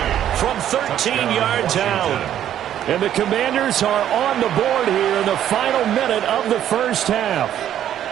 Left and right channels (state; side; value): quieter; left; 10.8 dB